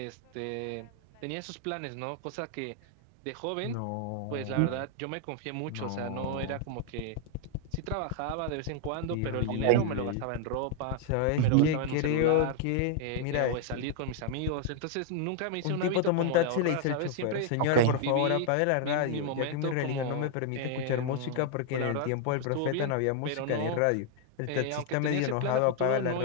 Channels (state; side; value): different; both; correlation 0.00